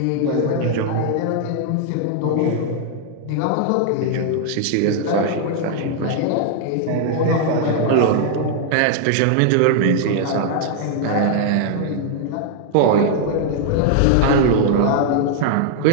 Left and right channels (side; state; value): both; different; correlation 0.00